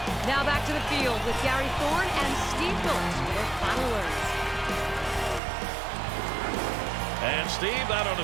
Now back to the field with Gary Thorne and Steve Phillips for their final words. And, Steve, that ought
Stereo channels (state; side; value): drops out; left; at 5.4 s